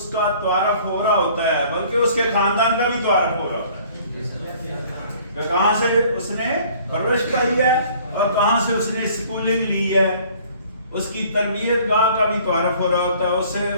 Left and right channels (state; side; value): inverted; both; correlation -0.54